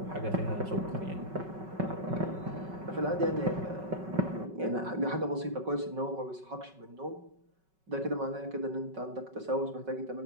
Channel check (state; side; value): late; left; 5.3 ms